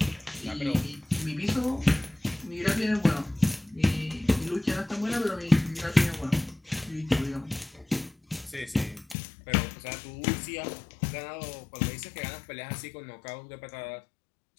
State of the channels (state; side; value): drops out; right; at 9.2 s